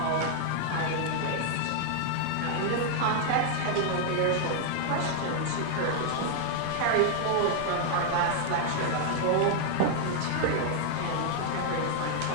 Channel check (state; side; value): different; both; correlation 0.00